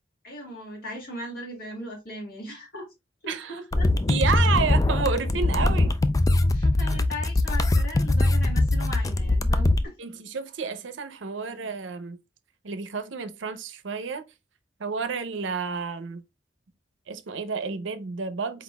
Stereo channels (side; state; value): both; normal; correlation 0.73